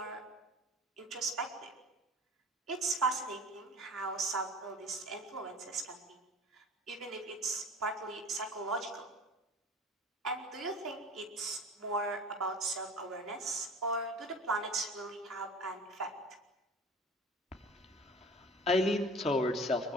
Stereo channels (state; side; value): normal; both; correlation 0.41